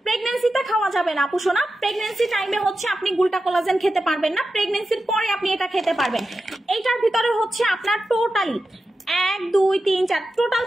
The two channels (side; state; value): both; normal; correlation 0.91